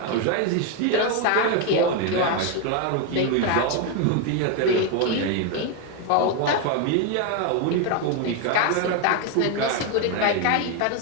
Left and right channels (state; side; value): different; both; correlation 0.01